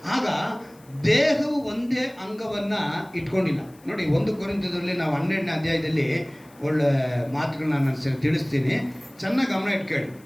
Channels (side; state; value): left; noise; hiss, 28 dB below the sound